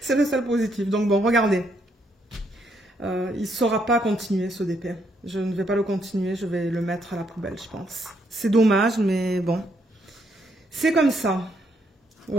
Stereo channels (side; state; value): both; normal; correlation 0.74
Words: le seul positif. Donc bon, regardez. Il ne saura pas continuer ce DP. Je ne vais pas le continuer, je vais le mettre à la poubelle, je pense. C'est dommage, mais bon. C'est comme ça.